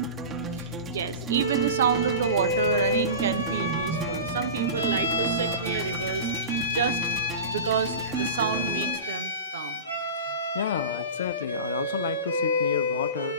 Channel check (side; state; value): both; inverted; correlation -0.31